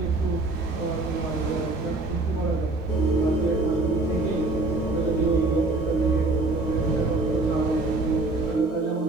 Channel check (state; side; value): quieter; left; 3.1 dB